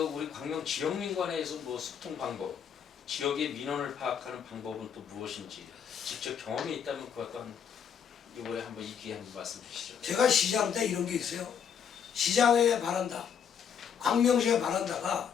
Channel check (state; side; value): quieter; right; 7.7 dB